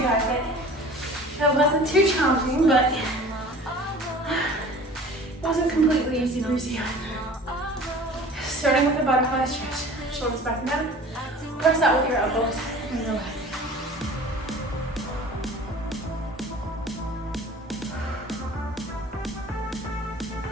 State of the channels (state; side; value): normal; both; correlation 0.44